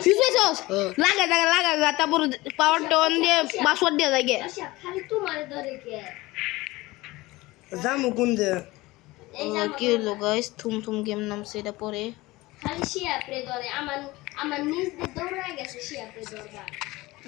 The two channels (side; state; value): right; quieter; 20.2 dB